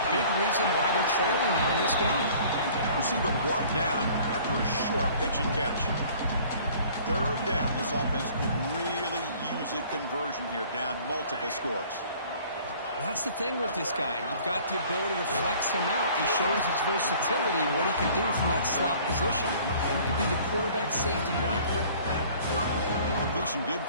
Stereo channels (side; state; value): both; inverted; correlation -0.52